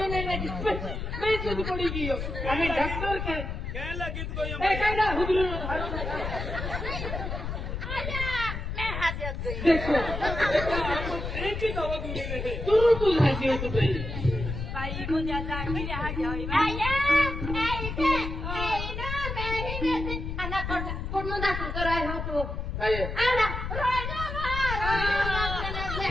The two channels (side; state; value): left; noise; rumble, 5 dB below the sound